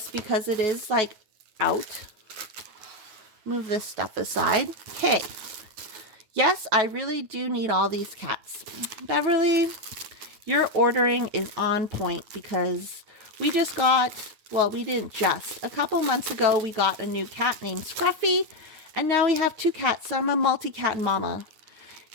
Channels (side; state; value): left; late; 9.4 ms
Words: because it is like out. Move this stuff aside. Okay. Yes, I really do need all these cats. Beverly, your ordering is on point because we just got... well, we didn't just. A couple months ago, we got a new cat named Scruffy, and now we have 2 cats, so I'm a multi-cat mama.